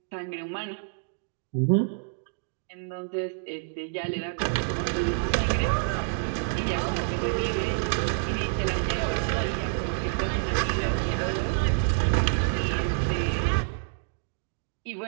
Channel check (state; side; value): silent; left; digital silence